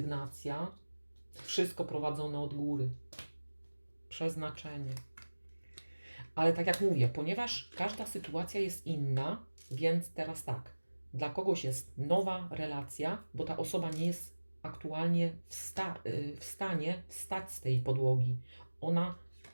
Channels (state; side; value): inverted; both; correlation -1.00